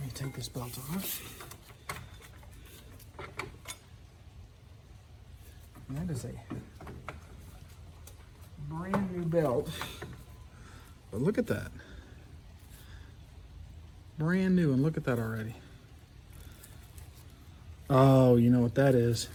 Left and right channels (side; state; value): both; identical; correlation 1.00